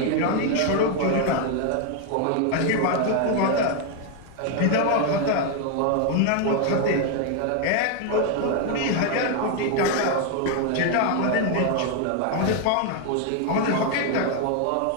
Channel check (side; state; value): both; different; correlation 0.01